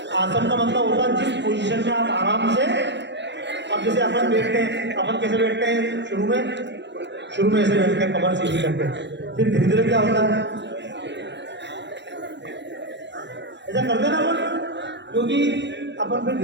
आसन का मतलब होता है जिस पोजीशन में आप आराम से, अब जैसे अपन बैठते हैं, अपन कैसे बैठते हैं? शुरू में ऐसे बैठते हैं, कमर सीधी करते हैं, फिर धीरे धीरे क्या होता है? ऐसा करते ना अपन, क्योंकि अपन फिर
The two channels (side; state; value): left; late; 0.52 ms